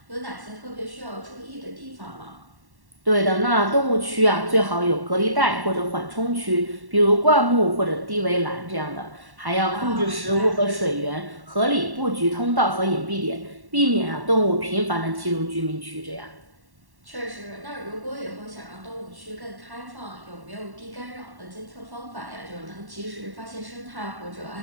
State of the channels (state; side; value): late; left; 1.1 ms